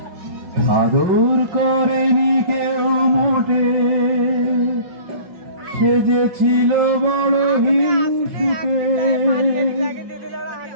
আদর করেনি কেউ মোটে, সে যে ছিল বড় হিংসুটে।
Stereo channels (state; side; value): late; left; 5.8 ms